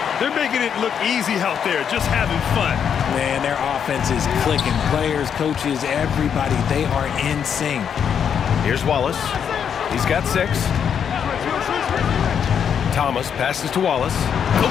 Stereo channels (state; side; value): quieter; right; 7.8 dB